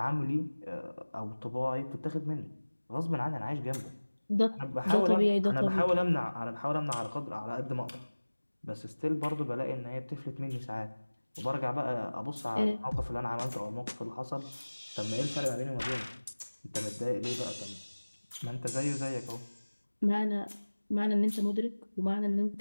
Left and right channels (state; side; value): inverted; both; correlation -1.00